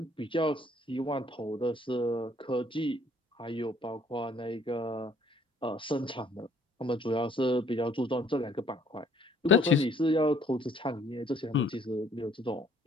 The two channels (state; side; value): normal; both; correlation 0.61